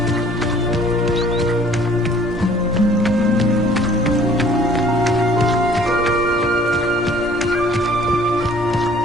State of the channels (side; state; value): both; normal; correlation 0.55